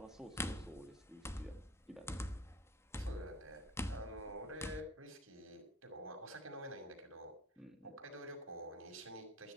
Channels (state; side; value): normal; both; correlation 0.45